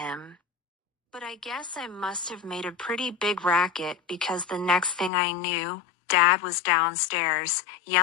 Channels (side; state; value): right; drops out; at 5.1 s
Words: But I guess I must have made a pretty big racket because the next thing I knew, Dad was downstairs,